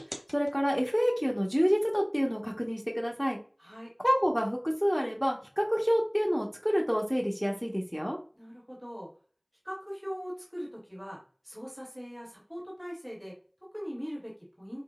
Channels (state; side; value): identical; both; correlation 1.00